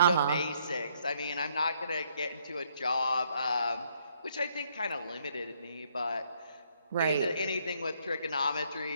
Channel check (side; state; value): both; inverted; correlation -0.68